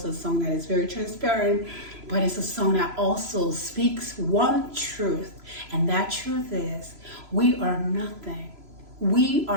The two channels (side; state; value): left; late; 3.0 ms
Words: a song that is very transparent, but it's a song that also speaks one truth, and that truth is we are nothing. We